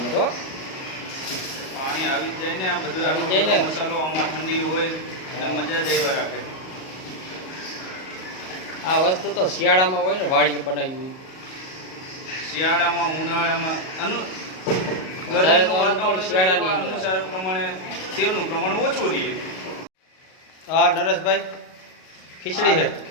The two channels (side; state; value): right; late; 38 ms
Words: તો. પાણી આવી જ જાય ને. આ બધું આવી જાય ને. મસાલો આમાં ઠંડી હોય એટલે મજા જ આવ્યા રાખે. આ વસ્તુ તો શિયાળામાં હોય ને, વાડીએ બનાવ્યું હોય. શિયાળામાં ઉનાળામાં વધારે તો અનુકૂળ શિયાળાની અંદર. અનુસાર પ્રમાણે તેલનું પ્રમાણ ઓછું રહે. હા નરેશભાઈ, ખીચડી છે.